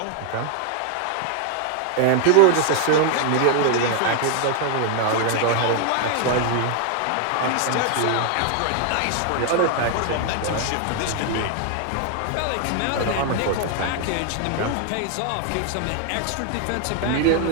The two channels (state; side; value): different; both; correlation 0.00